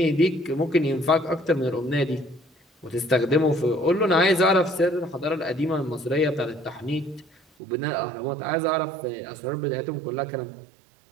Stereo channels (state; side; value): drops out; left; at 7.4 s